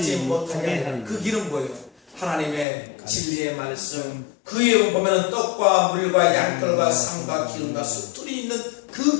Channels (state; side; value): drops out; right; at 2.7 s